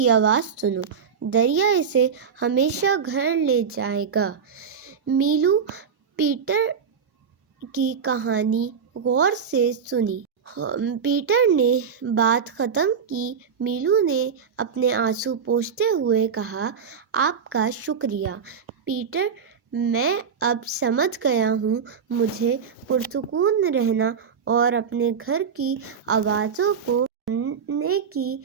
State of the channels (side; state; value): left; quieter; 6.6 dB